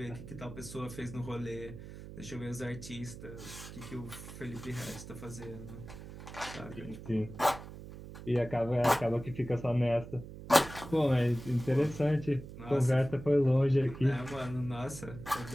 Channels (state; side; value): noise; right; hum, 13 dB below the sound